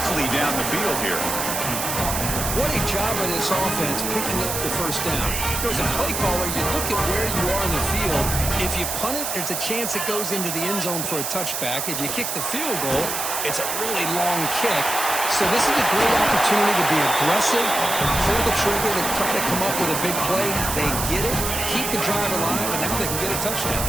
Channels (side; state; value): right; noise; hiss, 2 dB below the sound